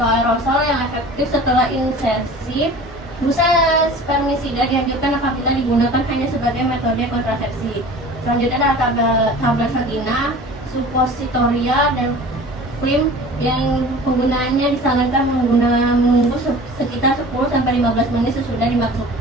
aerosol yang efektif setelah insersi. Busa spermisida dianjurkan apabila digunakan hanya sebagai metode kontrasepsi. Selanjutnya adalah tablet vagina, suppositoria, dan krim yang penggunaannya disarankan menunggu sekitar 10-15 menit sesudah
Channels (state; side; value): normal; both; correlation 0.41